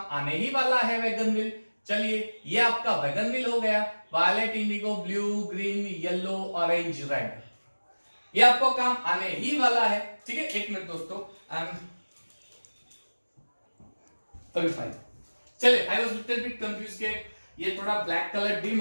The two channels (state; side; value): inverted; both; correlation -1.00